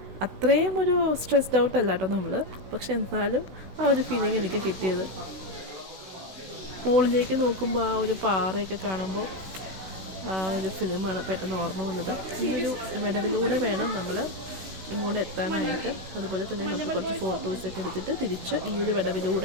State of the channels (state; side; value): late; left; 16 ms